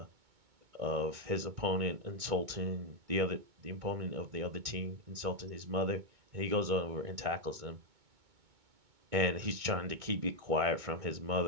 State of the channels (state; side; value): late; left; 2.2 ms